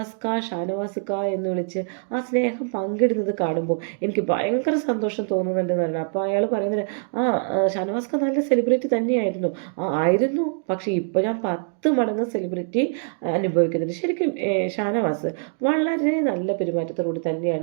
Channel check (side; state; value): left; silent; 60 dB below the other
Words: എന്ന് വിളിച്ച് ആ സ്നേഹം പങ്കിടുന്നത് കാണുമ്പോൾ എനിക്ക് ഭയങ്കര സന്തോഷം തോന്നുന്നുണ്ടെന്ന് പറഞ്ഞു. അപ്പോൾ അയാൾ പറയുന്നത്, ഷാനവാസ്ക നല്ല സെലിബ്രിറ്റി തന്നെയായിരുന്നു. ആയിരുന്നു, പക്ഷേ ഇപ്പോൾ ഞാൻ 10 മടങ്ങ് സെലിബ്രിറ്റി അനുഭവിക്കുന്നുണ്ട്. ശരിക്കും ഷാനവാസ് വളരെ നല്ല പെരുമാറ്റത്തോടുകൂടി